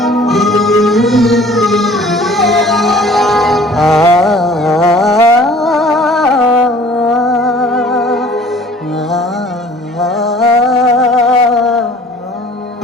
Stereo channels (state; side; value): normal; both; correlation 0.51